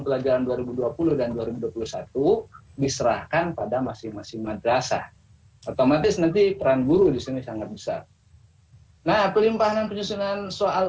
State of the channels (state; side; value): identical; both; correlation 1.00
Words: pelajaran 2020 dan 2021 diserahkan pada masing-masing madrasah. Otomatis nanti peran guru di sini sangat besar. Nah, pelimpahan penyusunan